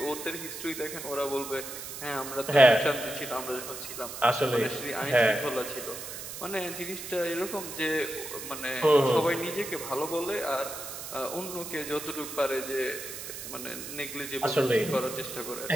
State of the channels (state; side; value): noise; right; hiss, 9 dB below the sound